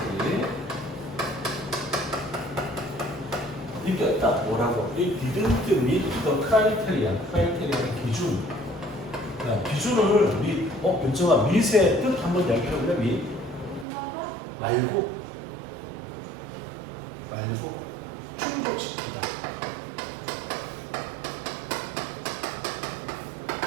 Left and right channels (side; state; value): left; drops out; at 13.9 s